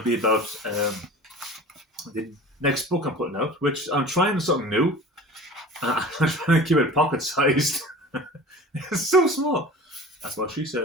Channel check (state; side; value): normal; both; correlation 0.39